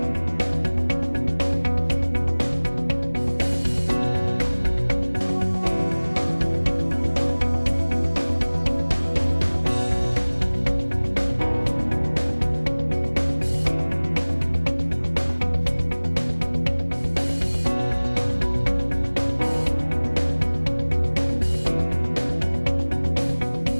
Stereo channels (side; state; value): both; inverted; correlation -1.00